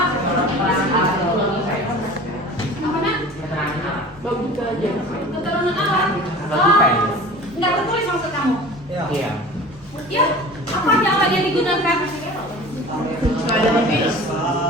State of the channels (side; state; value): both; normal; correlation 0.40